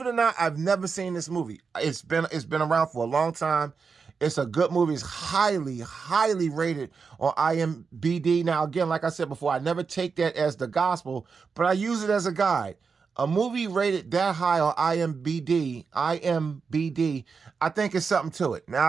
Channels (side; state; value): left; quieter; 5.3 dB